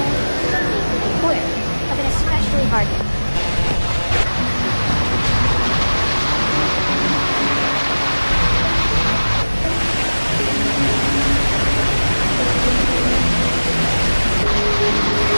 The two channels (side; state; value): both; inverted; correlation -1.00